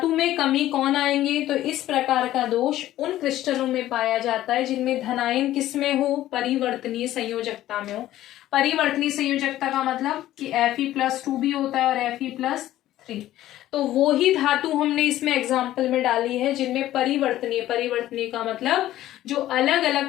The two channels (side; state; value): right; quieter; 14.0 dB